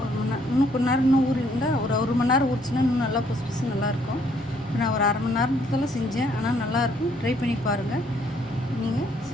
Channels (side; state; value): both; normal; correlation 0.66